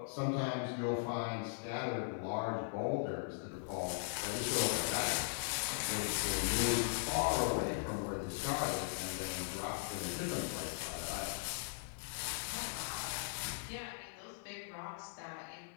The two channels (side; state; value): right; silent; 52 dB below the other